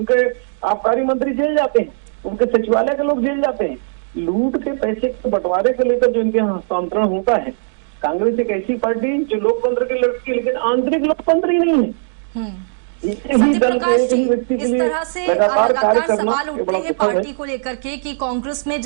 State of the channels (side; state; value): left; silent; digital silence